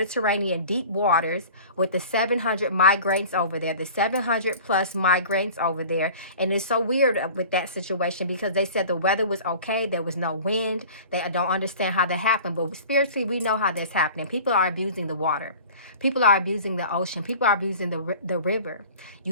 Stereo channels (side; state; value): both; inverted; correlation -0.42